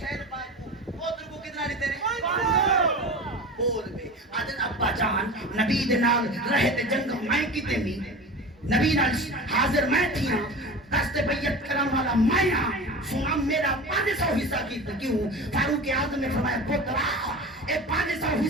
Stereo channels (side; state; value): both; normal; correlation 0.32